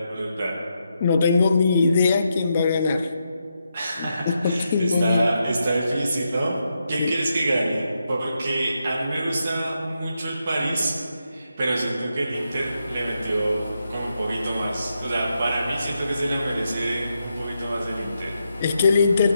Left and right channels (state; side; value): inverted; both; correlation -0.84